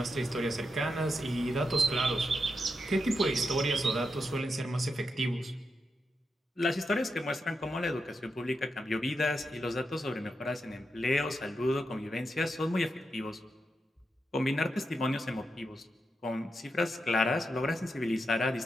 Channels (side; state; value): both; normal; correlation 0.86